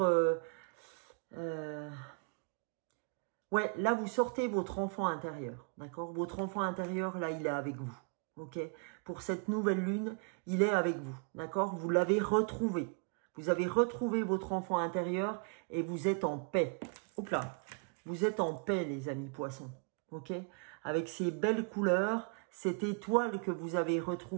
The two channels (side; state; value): left; quieter; 38.1 dB